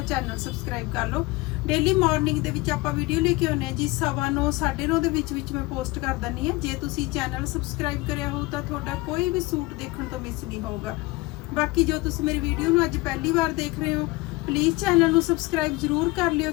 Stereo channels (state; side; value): quieter; right; 22.0 dB